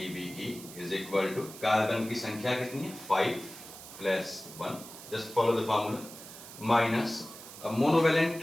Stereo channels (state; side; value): noise; right; hiss, 15 dB below the sound